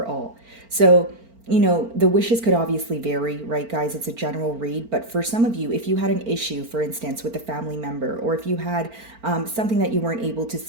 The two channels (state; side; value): late; left; 4.4 ms